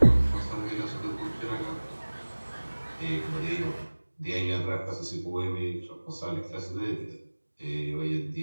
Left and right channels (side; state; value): both; inverted; correlation -1.00